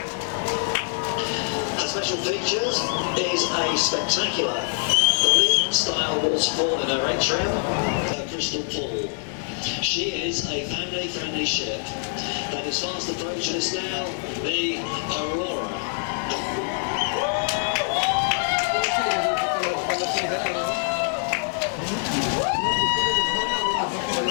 Her special features is a spectacular Fawley-style waterfall in her atrium, her crystal pool. She is a family-friendly ship that is fast approaching us now, the Aurora.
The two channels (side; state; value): right; silent; 62 dB below the other